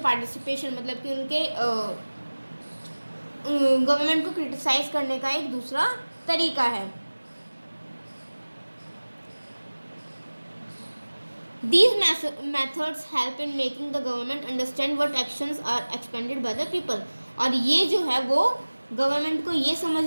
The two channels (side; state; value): both; inverted; correlation -1.00